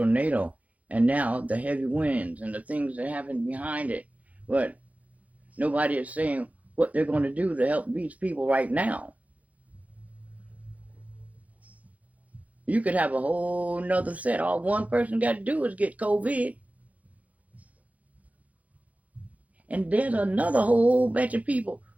and now the heavy winds and the things that happen behind it. But nobody is saying what they're going to do to help these people right now. You could have a whole nother set. All one person got to do is get COVID. And there's another whole bunch of people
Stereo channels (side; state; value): left; late; 0.070 ms